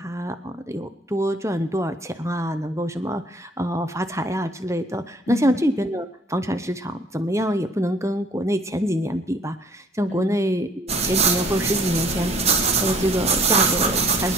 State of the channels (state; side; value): normal; both; correlation 0.57